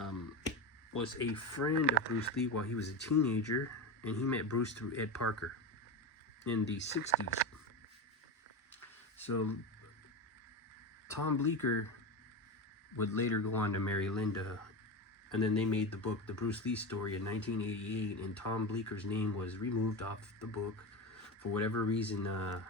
was a friend of Bruce Lee while he was a teenager, and he met Bruce through Ed Parker in the 60s. So Tom Bleecker would later go on to marry Linda, and then they made the book The Bruce Lee Story in 1988, and Tom Bleecker's name was removed off the book for whatever reason.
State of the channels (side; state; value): both; normal; correlation 0.19